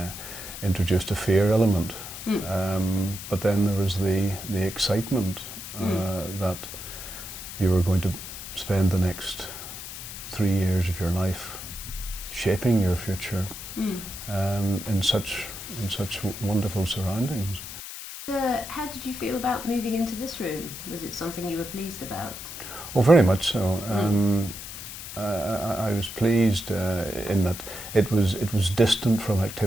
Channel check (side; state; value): left; noise; hiss, 10 dB below the sound